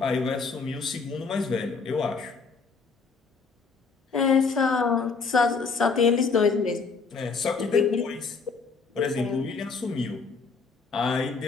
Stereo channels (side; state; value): right; quieter; 4.8 dB